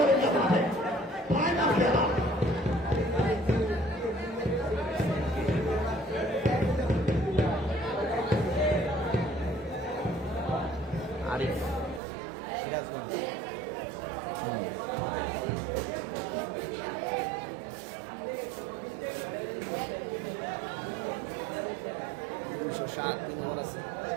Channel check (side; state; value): left; drops out; at 12.0 s